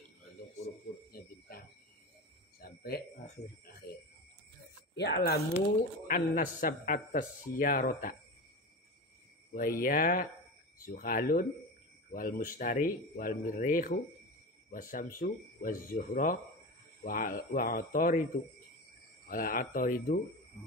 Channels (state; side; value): normal; both; correlation 0.26